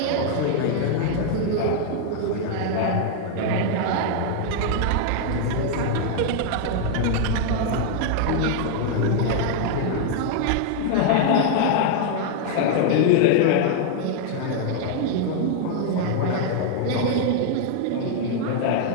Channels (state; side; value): different; both; correlation 0.00